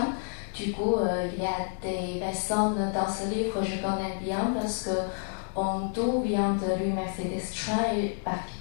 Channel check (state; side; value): silent; right; 58 dB below the other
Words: Du coup, il y a des personnes dans ce livre que je connais bien parce que on tout vient de l'université de Strasbourg et